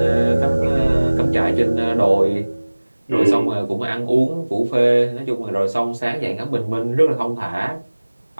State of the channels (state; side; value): inverted; both; correlation -1.00